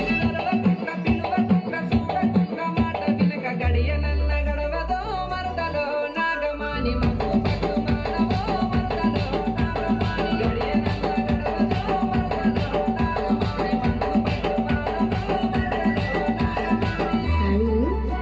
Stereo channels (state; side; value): identical; both; correlation 1.00